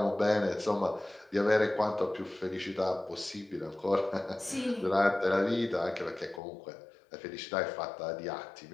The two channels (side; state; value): right; drops out; at 6.4 s